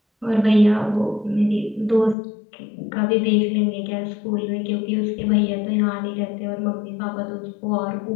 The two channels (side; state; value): right; drops out; at 2.1 s